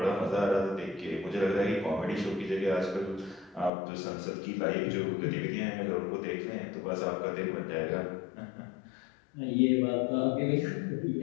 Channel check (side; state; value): right; drops out; at 3.7 s